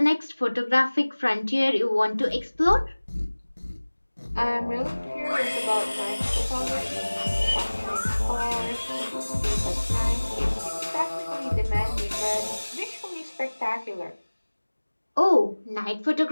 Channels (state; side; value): inverted; both; correlation -1.00